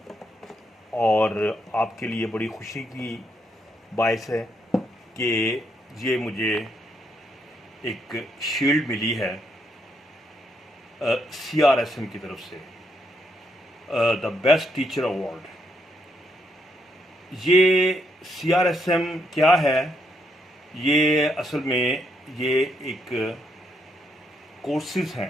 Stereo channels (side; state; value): both; normal; correlation 0.76